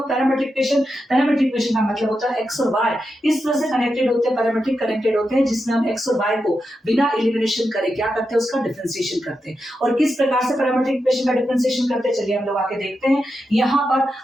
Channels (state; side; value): normal; both; correlation 0.88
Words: parametric equation? Parametric equation का मतलब होता है एक्स और वाई इस तरह से कनेक्टेड होते हैं, पैरामेट्रिक कनेक्टेड होते हैं, जिसमें हम एक्स और वाई को बिना एलिमिनेशन करे क्या करते हैं, उसका डिफरेंशिएशन करते हैं। और किस प्रकार से पैरामेट्रिक इक्वेशन का डिफरेंशिएशन करते हैं, चलिए हम लोग आके देखते हैं। यहाँ पर